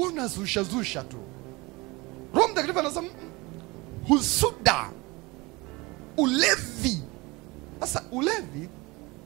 tu. Roho Mtakatifu anasema husuda. Ulevi. Sasa ulevi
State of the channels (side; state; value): left; quieter; 23.9 dB